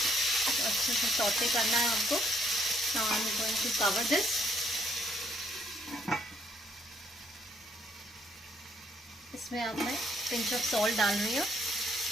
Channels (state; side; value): normal; both; correlation 0.68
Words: तो अच्छे से सौते करना है हमको। Now I'm going to cover this. इसमें अब मैं पिंच ऑफ सॉल्ट डाल रही हूँ।